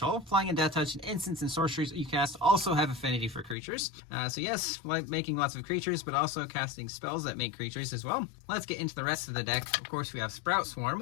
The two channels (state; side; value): drops out; right; at 3.6 s